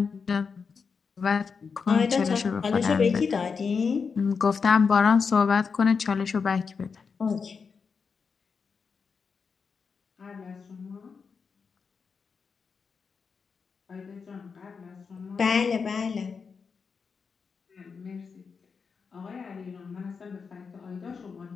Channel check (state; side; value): quieter; right; 5.5 dB